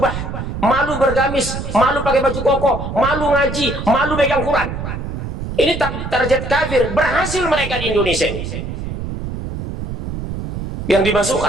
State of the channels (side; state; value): right; noise; rumble, 6 dB below the sound